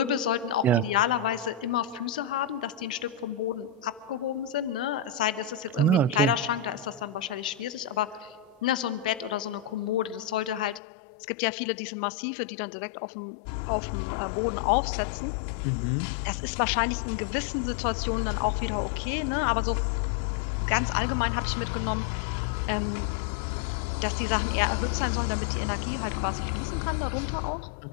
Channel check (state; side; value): drops out; right; at 10.8 s